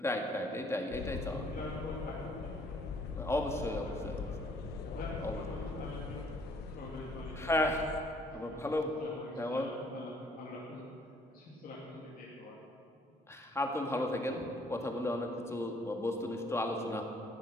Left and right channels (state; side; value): normal; both; correlation 0.62